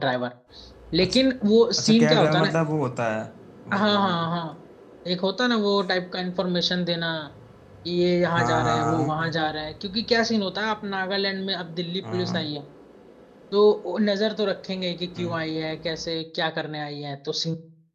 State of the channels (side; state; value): both; identical; correlation 1.00